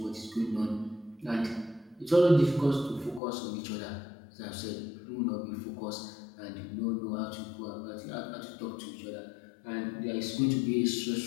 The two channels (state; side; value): drops out; right; at 3.2 s